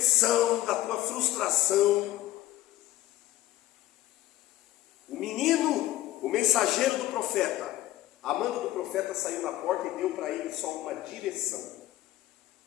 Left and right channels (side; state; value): right; quieter; 15.3 dB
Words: da tua frustração, o menino, o mensageiro do profeta, a manda do profeta saiu na porta e deu para ele só uma direção.